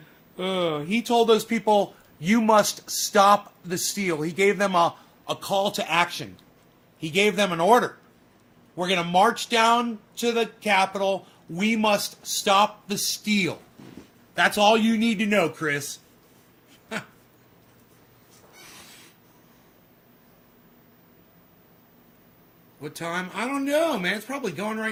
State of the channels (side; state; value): both; identical; correlation 1.00